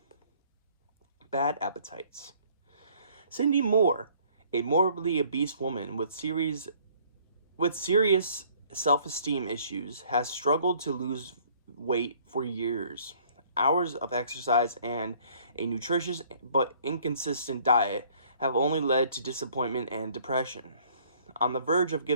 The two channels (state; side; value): inverted; both; correlation -0.59